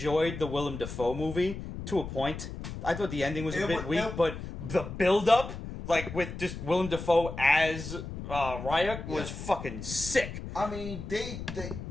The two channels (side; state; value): left; noise; rumble, 8 dB below the sound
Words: the Willem Dafoe movie to a point. I thought the ending was a bit weak, but the build up, like with just Willem Dafoe as Ryuk, was fucking sick. I mean,